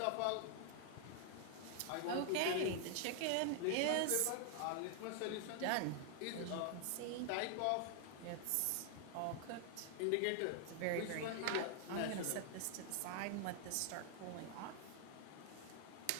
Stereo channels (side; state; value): both; different; correlation 0.00